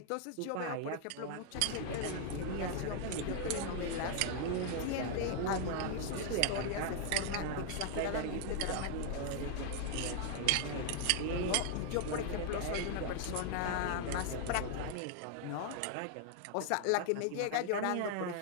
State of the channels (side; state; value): both; different; correlation 0.00